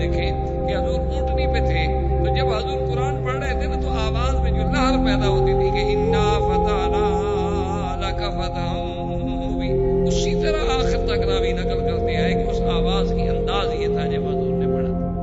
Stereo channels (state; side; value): identical; both; correlation 1.00